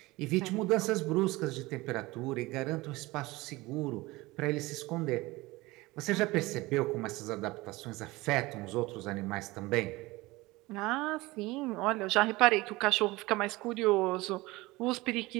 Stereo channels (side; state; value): left; quieter; 20.9 dB